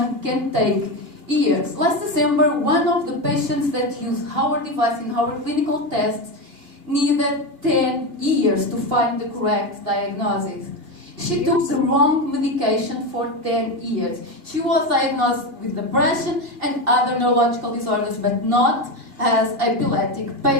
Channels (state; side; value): late; left; 2.3 ms